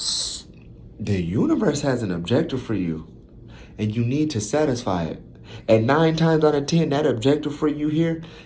the universe has an objective for you, and you need to satisfy it. And 9 times out of 10, that objective for you here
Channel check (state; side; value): identical; both; correlation 1.00